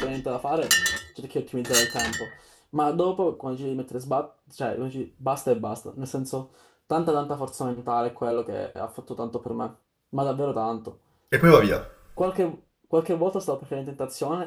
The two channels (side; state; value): both; identical; correlation 1.00